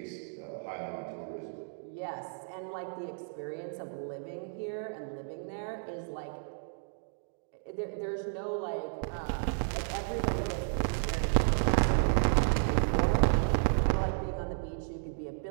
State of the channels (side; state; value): left; silent; digital silence